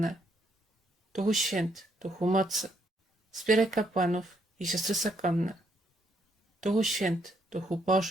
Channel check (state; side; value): normal; both; correlation 0.73